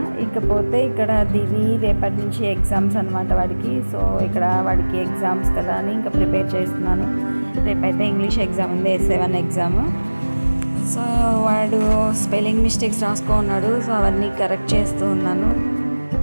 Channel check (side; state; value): both; inverted; correlation -1.00